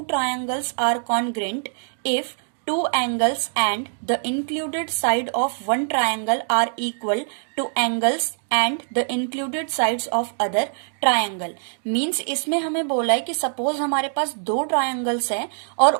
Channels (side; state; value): left; silent; digital silence